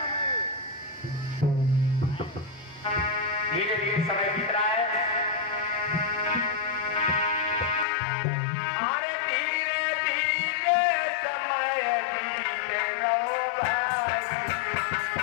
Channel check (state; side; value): drops out; right; at 7.9 s